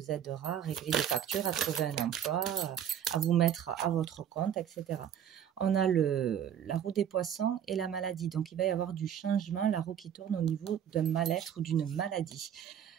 aidera à régler des factures, à trouver un emploi, à vous mettre à votre compte, etc. On a la roue des poissons et la maladie. Donc, il va y avoir du changement, la roue qui tourne au niveau d'un mal-être ou d'une maladie.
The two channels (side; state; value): left; quieter; 9.4 dB